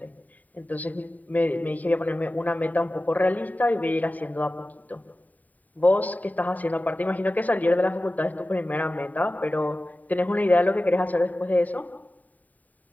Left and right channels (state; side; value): late; right; 0.077 ms